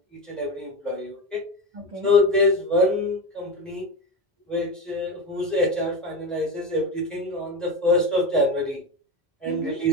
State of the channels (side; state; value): both; normal; correlation 0.20